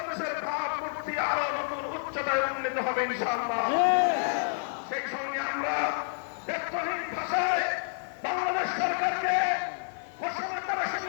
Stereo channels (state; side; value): silent; right; digital silence